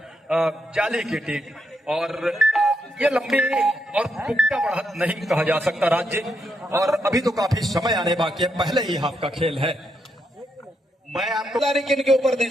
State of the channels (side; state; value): both; normal; correlation 0.80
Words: जाली की टीम। और ये लंबी और पुख्ता बढ़त नहीं कहा जा सकता राज्य, और अभी तो काफी समय आने बाकी है, पहले ही हाफ का खेल है। मैं आपको किन के ऊपर दी